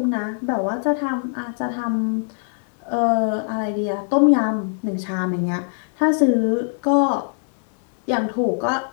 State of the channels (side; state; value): right; silent; digital silence